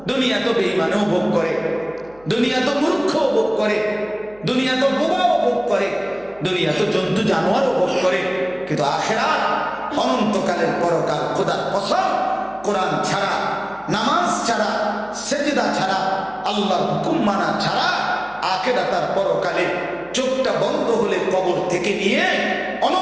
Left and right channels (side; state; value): right; noise; hum, 28 dB below the sound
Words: দুনিয়া তো বেঈমানও ভোগ করে, দুনিয়া তো মূর্খও ভোগ করে, দুনিয়া তো বোবাও ভোগ করে, দুনিয়া তো জন্তু জানোয়ারও ভোগ করে। কিন্তু আখিরাত অনন্তকালের পরকাল, খোদার কসম, কোরআন ছাড়া, নামাজ ছাড়া, সেজদা ছাড়া, আল্লাহর হুকুম মানা ছাড়া আখিরাতের পরকালে চোখটা বন্ধ হলে কবর থেকে নিয়ে